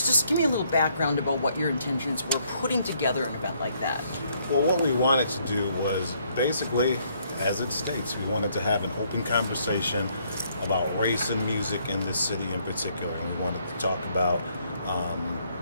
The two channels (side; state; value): both; inverted; correlation -0.69